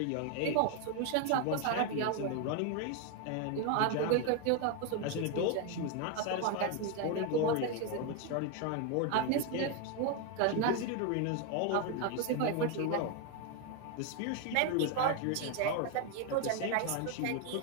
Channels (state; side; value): different; both; correlation 0.01